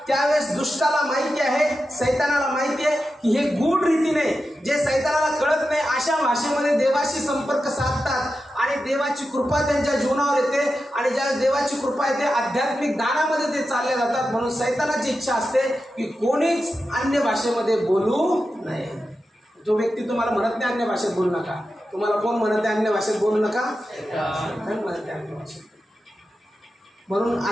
त्यावेळेस दुष्टाला माहिती आहे, सैतानाला माहिती आहे की हे गूढ रीतीने जे सैतानाला कळत नाही अशा भाषेमध्ये देवाशी संपर्क साधतात आणि देवाची कृपा त्यांच्या जीवनावर येते. आणि ज्या देवाची कृपा येते आध्यात्मिक दानामध्ये ते चालले जातात. म्हणून सैतानाची इच्छा असते की कोणीच अन्य भाषेमध्ये बोलू नये. जो व्यक्ती तुम्हाला म्हणत नाही अन्य भाषेत बोलू नका, तुम्हाला कोण म्हणत आहे अन्य भाषेत बोलू नका? म्हणत आहे अन्य भाषेत. म्हणून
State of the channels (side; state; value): both; normal; correlation 0.90